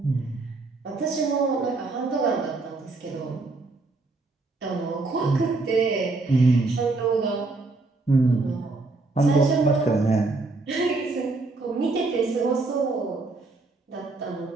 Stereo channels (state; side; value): quieter; left; 3.5 dB